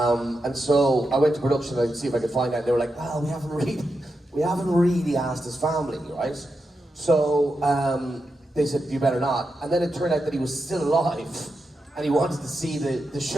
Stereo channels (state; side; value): normal; both; correlation 0.88